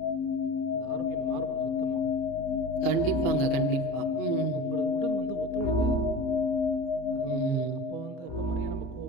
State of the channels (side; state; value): right; late; 30 ms